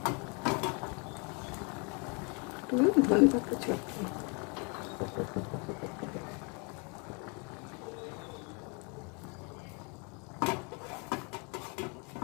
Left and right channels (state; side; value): quieter; right; 33.7 dB